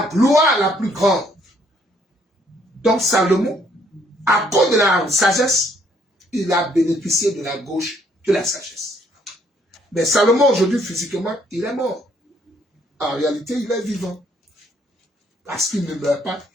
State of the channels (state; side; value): normal; both; correlation 0.67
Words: gloire la plus grande. Donc Salomon, à cause de la sagesse, il a bénéficié de la gauche de la sagesse. Mais Salomon, aujourd'hui, physiquement, il est mort. En réalité, il est vivant. Parce qu'il ne meurt pas,